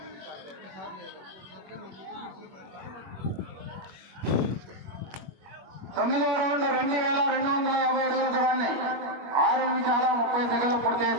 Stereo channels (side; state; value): left; late; 21 ms